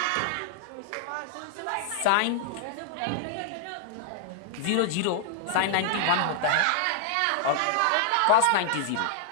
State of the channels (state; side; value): different; both; correlation -0.01